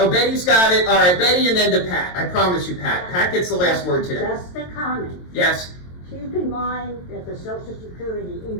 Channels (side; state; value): right; late; 22 ms